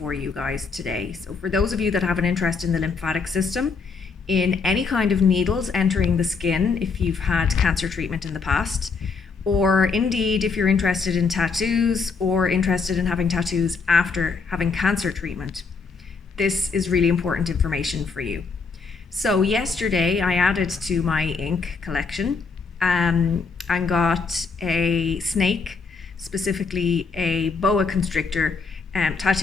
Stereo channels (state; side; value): quieter; right; 4.9 dB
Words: you guys today. So for those of you that have an interest in the lymphatic system, in any kind of needles entering the skin, if you've had cancer treatment in the past, or indeed if you're interested in tattoos or interested in having tattoos after having cancer treatment, this is really important information for you. So yesterday I added to my ink collection and got a snake, specifically a boa constrictor,